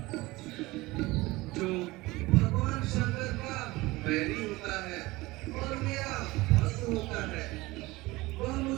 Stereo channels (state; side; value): quieter; left; 20.6 dB